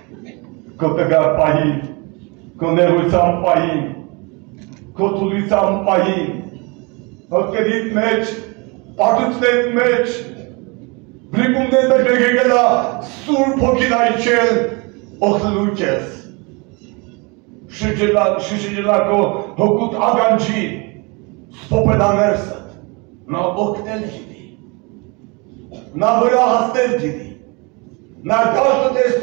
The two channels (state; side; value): quieter; left; 29.1 dB